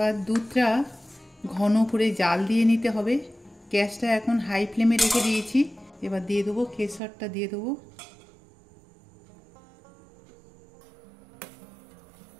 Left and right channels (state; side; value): drops out; left; at 7.0 s